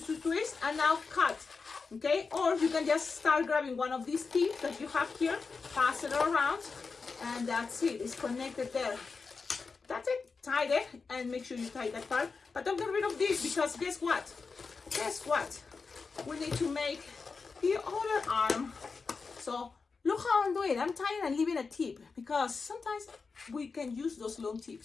twist, twist, and now cut. Okay, or you can just start grabbing one of these teeth that you have here, pass it around, and that's it. It's connected there. That's it. Tie it, and make sure you tie that part. But don't get rid of this, because guess what? Guess what? We need to make the other arm. So look how I'm doing. I'm tying and leaving a tip, because sometimes we can use those long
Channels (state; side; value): quieter; right; 4.7 dB